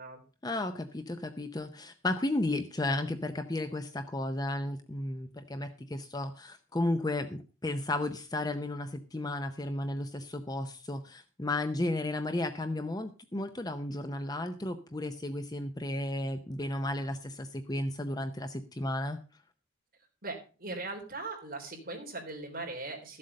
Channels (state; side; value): normal; both; correlation 0.67